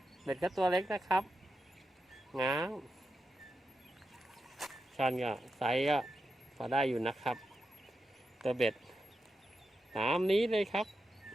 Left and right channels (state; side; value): normal; both; correlation 0.88